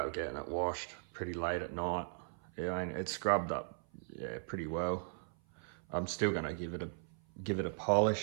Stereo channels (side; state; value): left; silent; 52 dB below the other